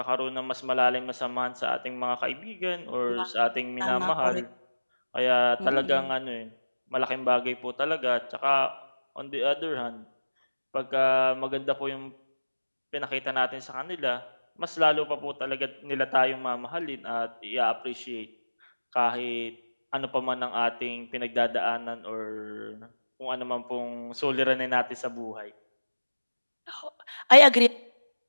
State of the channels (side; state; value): both; inverted; correlation -1.00